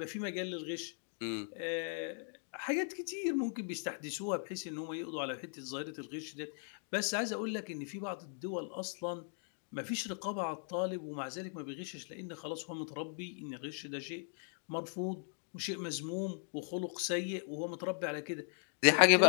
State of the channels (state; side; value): silent; right; 52 dB below the other